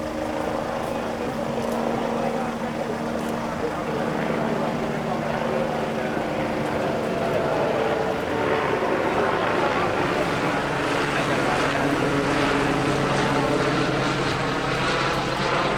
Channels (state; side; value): identical; both; correlation 1.00